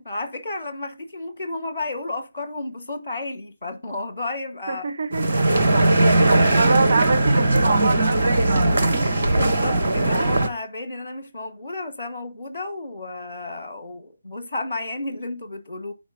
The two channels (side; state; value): both; inverted; correlation -0.88